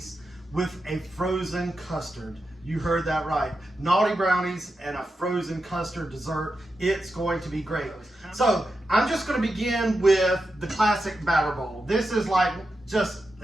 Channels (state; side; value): normal; both; correlation 0.89